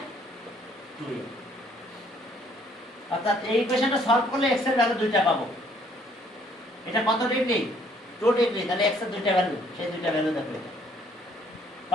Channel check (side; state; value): both; normal; correlation 0.63